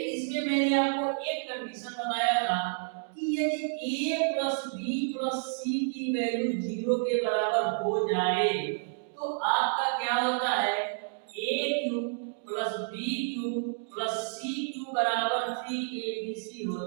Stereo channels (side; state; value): left; silent; digital silence